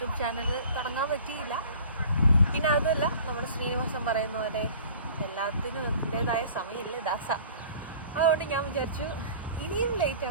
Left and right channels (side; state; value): both; inverted; correlation -0.45